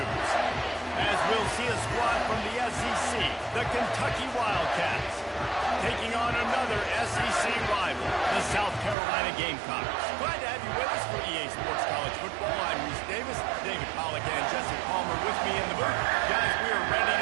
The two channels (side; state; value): left; drops out; at 9.0 s